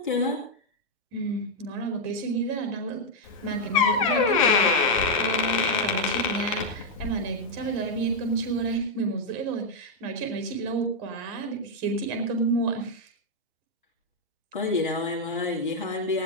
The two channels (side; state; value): both; normal; correlation -0.01